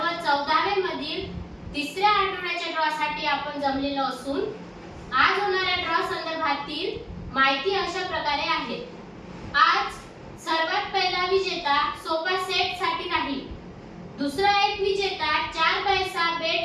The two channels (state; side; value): identical; both; correlation 1.00